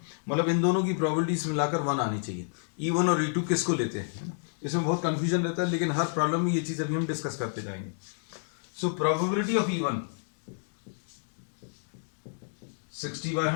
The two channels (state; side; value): silent; right; digital silence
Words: मतलब इन दोनों की प्रोबेबिलिटीज मिलाकर 1 आनी चाहिए. E1 और E2 किसको लेते हैं, है ना. इसमें बहुत कंफ्यूजन रहता है, लेकिन हर प्रॉब्लम में ये चीज अभी हम डिस्कस करते जाएंगे. So probability of E1 60 by